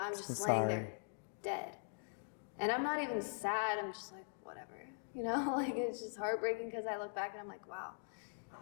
just laying there dead. And I'm not even sad. I'm just like, whatever. Like, it's just heartbreaking because I look back and I'm like, wow.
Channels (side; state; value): right; silent; digital silence